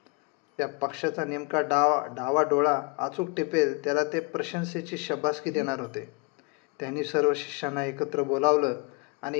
त्या पक्षाचा नेमका डावा डोळा अचूक टिपेल त्याला ते प्रशंसेची शब्बासकी देणार होते. त्यांनी सर्व शिष्यांना एकत्र बोलावलं आणि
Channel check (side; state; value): right; quieter; 30.1 dB